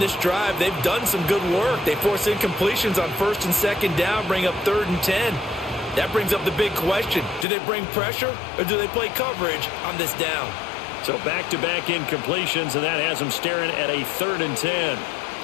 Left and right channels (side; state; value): right; drops out; at 7.5 s